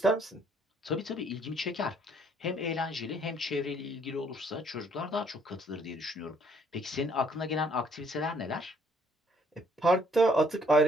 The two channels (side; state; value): both; normal; correlation 0.65